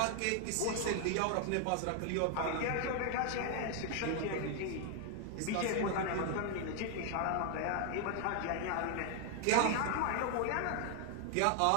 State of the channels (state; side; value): different; both; correlation 0.00